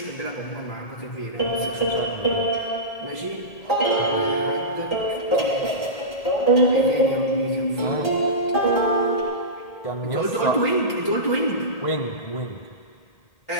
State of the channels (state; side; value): late; right; 1.8 ms